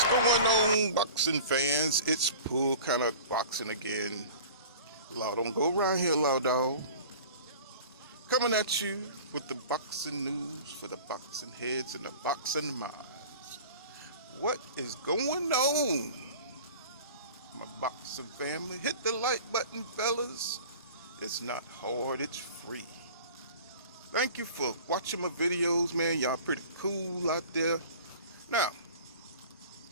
What's going on, boxing fans? It's Pull kind of boxing again. Law, don't go around here, law dog. Coming at you with the boxing news for the boxing heads and the boxing minds. What is going on, my boxing family? Hit the like button, fellas. It's not hard, it's free. Thank you for watching my videos, man. Y'all pretty cool out there. Now,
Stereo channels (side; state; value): both; inverted; correlation -0.42